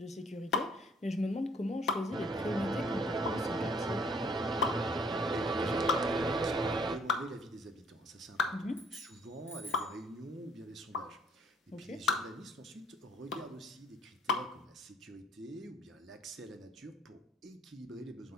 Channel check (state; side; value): normal; both; correlation 0.61